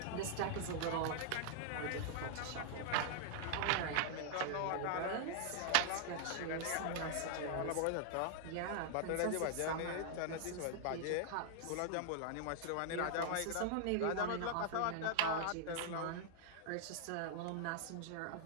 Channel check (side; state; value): both; different; correlation 0.00